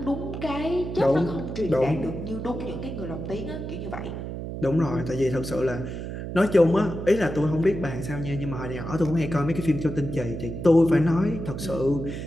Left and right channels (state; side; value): noise; right; hum, 7 dB below the sound